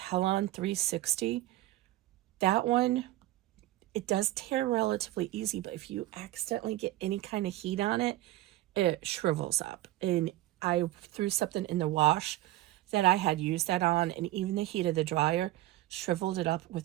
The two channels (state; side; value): quieter; left; 16.4 dB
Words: 360. That one, it does tear relatively easy, but if you accidentally get any kind of heat on it, it shrivels up. And I threw something in the wash that I had used that on, and even the heat of the dryer shriveled it up